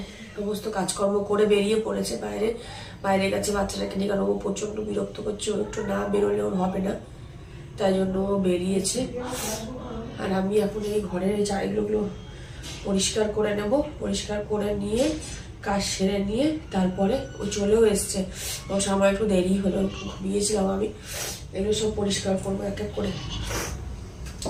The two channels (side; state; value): both; identical; correlation 1.00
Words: সমস্ত কাজকর্ম করে বেরিয়ে পড়েছে বাইরে গেছে বাচ্চাটাকে নিয়ে, কারণ ও প্রচণ্ড বিরক্ত করছে। ও একটু না বেরোলে ওর হবে না, তাই জন্য ও বেরিয়েছে। আর আমি এখন এই ঘরের এই জায়গাগুলো পরিষ্কার করে নেব। পরিষ্কার করে নিয়ে কাজ সেরে নিয়ে তারপরে ও চলেও এসছে। ও সময় একটু দেরি হলো, একটু ঘুমিয়েছিলাম আমি। এগুলো সব পরিষ্কার করবো এক এক করে।